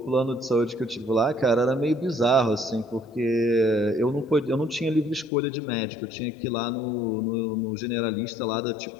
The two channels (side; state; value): right; drops out; at 5.3 s